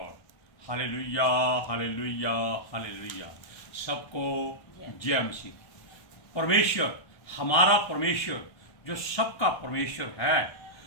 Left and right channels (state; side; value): late; right; 1.3 ms